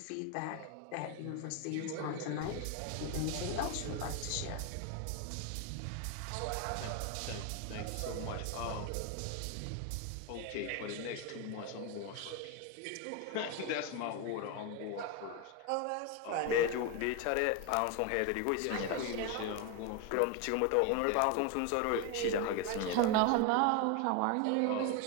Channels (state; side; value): different; both; correlation 0.02